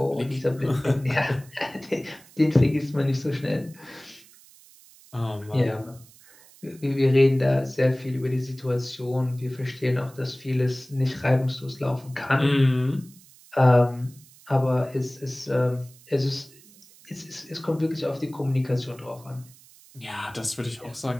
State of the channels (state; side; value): noise; right; hiss, 24 dB below the sound